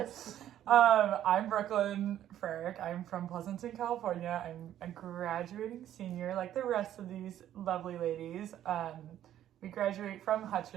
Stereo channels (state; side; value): quieter; left; 11.6 dB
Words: I'm Brooklyn Frerick. I'm from Pleasanton, California. I'm a graduating senior like the rest of these lovely ladies. We graduate from